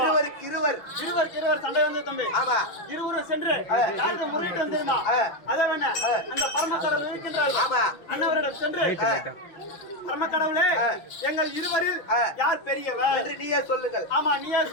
இருவருக்கு இருவர். இருவர் சண்டை வந்து தம்பி. ஆமா. இருவரும் சென்று யாருக்கு முறையிட்டு வந்தேமா? அதை வேணா அந்த பரமக்கடவுள் இருக்கின்றார். ஆமா. அண்ணவரிடம் சென்று, பரமக்கடவுளே, எங்கள் இருவரில் யார் பெரியவர் என்று நீயே சொல்லுங்கள். ஆமா, நீயே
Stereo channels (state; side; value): late; right; 6.1 ms